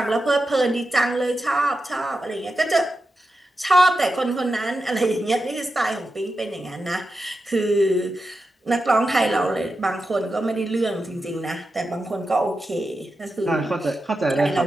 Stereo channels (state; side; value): normal; both; correlation 0.90